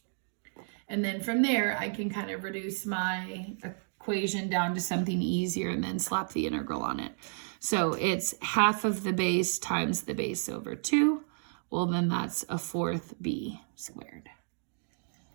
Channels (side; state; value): left; silent; 55 dB below the other